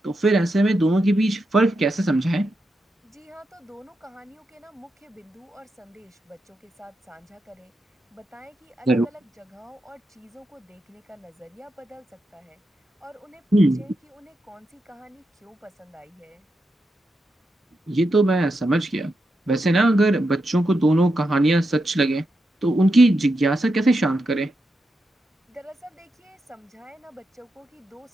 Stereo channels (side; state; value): both; normal; correlation 0.86